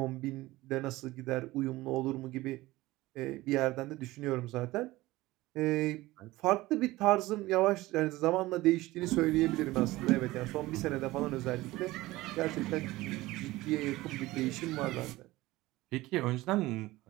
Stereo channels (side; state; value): left; quieter; 18.6 dB